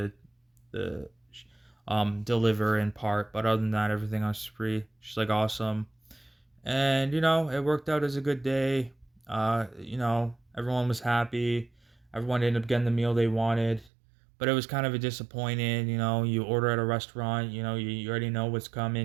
deliver in part, but other than that, everything else is free." She's like, "Awesome." And you know it worked out as a good day. You know everyone was happy, everyone ended up getting the meal they wanted, but it was kind of a disappointing. You know, you order at a restaurant, you know, you already know what's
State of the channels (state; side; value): drops out; left; at 13.9 s